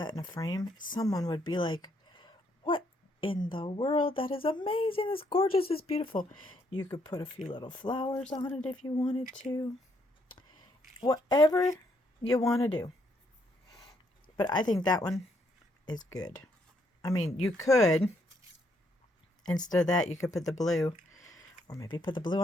in a frame. Someone would be like, what in the world? That is amazing. It's gorgeous. It's beautiful. You could put a few little flowers on it if you wanted to. Whatever you want to do. But I think that one is good. I mean, you could, instead of that, you could put the blue, or maybe put the blue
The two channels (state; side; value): normal; both; correlation 0.73